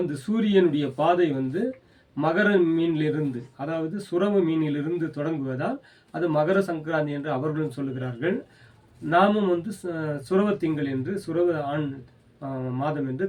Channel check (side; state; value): both; identical; correlation 1.00